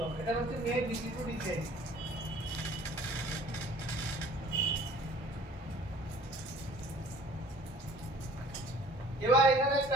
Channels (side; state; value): both; normal; correlation 0.51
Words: হবে, এটা হচ্ছে মেন ডিসি টু ডিসি আইসি। এবার এখানে